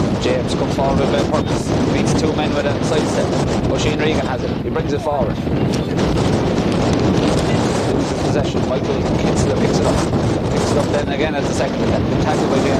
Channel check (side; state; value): both; identical; correlation 1.00